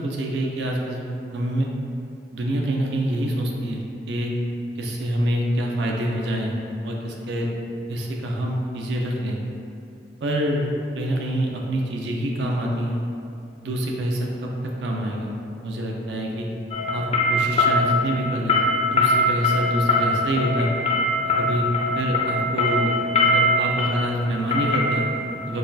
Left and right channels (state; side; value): normal; both; correlation 0.40